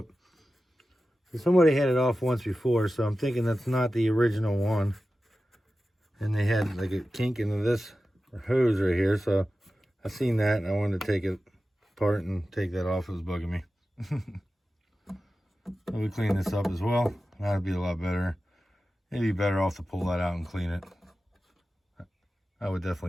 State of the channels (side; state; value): both; normal; correlation 0.94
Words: So somebody had it off once before, so I'm thinking that's not the original one. And they had like a kink into this hose right here, so I seen that and I wanted to take it apart and take that off. It was bugging me. So we clean this up as well. That'd be a lot better. It'd be better off to pull that out and clean it. I would